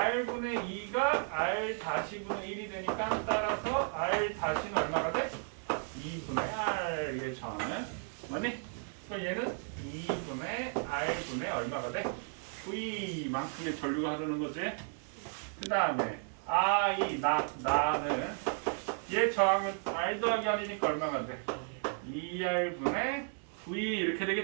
2가 R-분의 1이 되니까 따라서 R-는 얼마가 돼? 2분의 R의 저항은 맞니? 그럼 얘는 2분의 R분의 얼마가 돼? V만큼의 전류가 흐르는 거지? 그 다음에 나는 얘 저항은 R 더하기 R이니까 얼마가 돼? 2R분의 V 이렇게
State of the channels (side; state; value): left; silent; 55 dB below the other